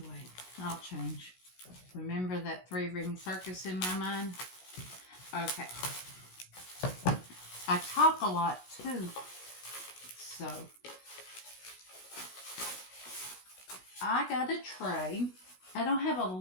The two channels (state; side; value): late; right; 16 ms